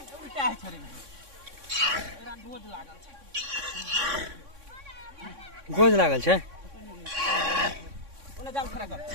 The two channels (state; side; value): late; left; 3.6 ms